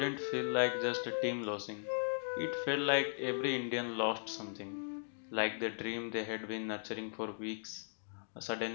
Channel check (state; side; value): silent; right; digital silence